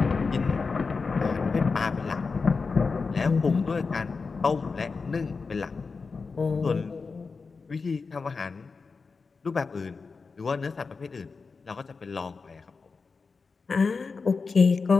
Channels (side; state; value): right; quieter; 4.6 dB